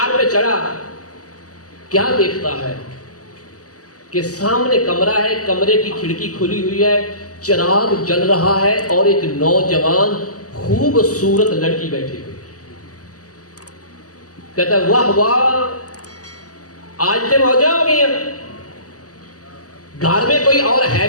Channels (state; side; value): late; right; 0.67 ms